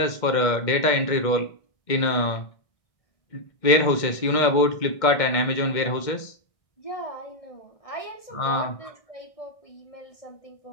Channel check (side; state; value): right; late; 2.1 ms